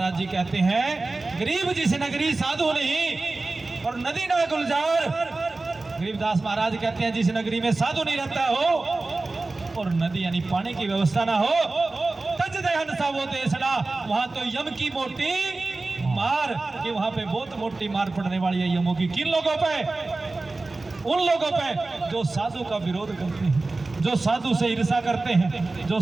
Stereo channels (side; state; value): left; quieter; 3.3 dB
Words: जी कहते हैं, गरीब जिस नगरी साधु नहीं और नदी ना गुलजार। गरीबदास महाराज कहते हैं जिस नगरी में साधु नहीं रहता हो और नदी यानी पानी की व्यवस्था ना हो, तज दहन सा वो देशना, वहां तो यम की मोटी मार, कि वहां पे बहुत मोटी मार पड़ने वाली है यमों की। किन लोगों पे? उन लोगों पे जो साधु का विरोध करते हैं, जो साधु से ईर्षा करते हैं, जो